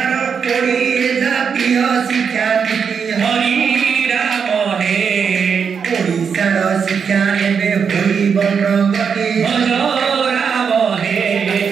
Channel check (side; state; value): left; quieter; 6.5 dB